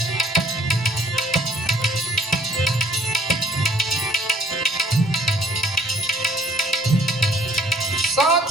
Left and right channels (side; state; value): both; normal; correlation 0.61